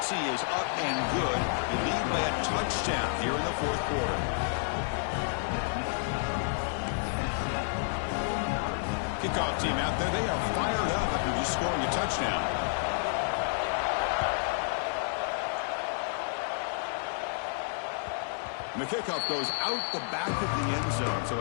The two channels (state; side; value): silent; right; digital silence